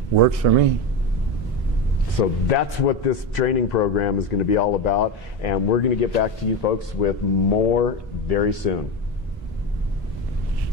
Works for me. So that's what this training program is going to be all about, and we're going to get back to you folks with more very soon.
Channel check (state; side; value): normal; both; correlation 0.18